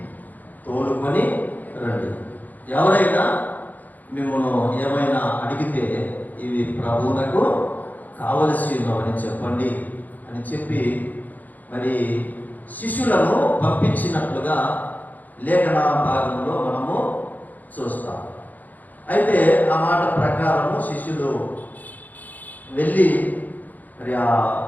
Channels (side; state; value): right; late; 0.082 ms